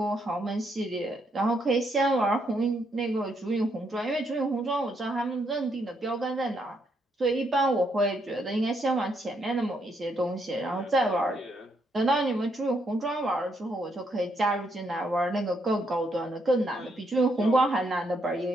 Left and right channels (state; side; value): normal; both; correlation 0.76